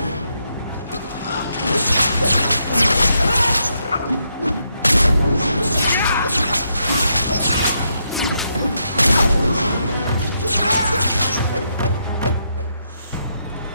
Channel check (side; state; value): both; inverted; correlation -0.79